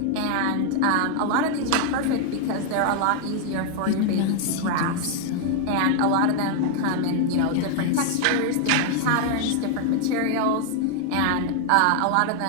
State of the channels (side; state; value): both; different; correlation 0.00